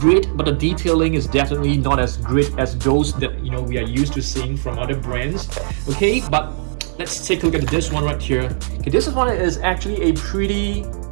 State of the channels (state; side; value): silent; left; digital silence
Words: but the detailing is definitely not as great as those that, you know, we are used to seeing from other brands. Okay, but let's take a look at this one right here. Okay, this one is actually a pretty,